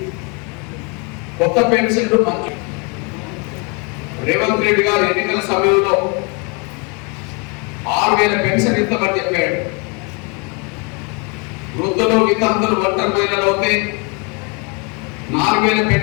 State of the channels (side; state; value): right; quieter; 32.8 dB